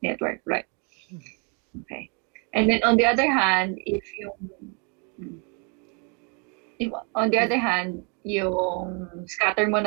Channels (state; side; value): quieter; left; 36.0 dB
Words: network, right? Okay. And then on the other hand, if on the other hand, yung scatter mo